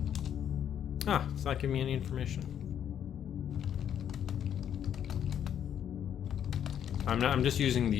Ah, it's not giving me any information. I'm just using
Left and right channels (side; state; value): right; quieter; 9.4 dB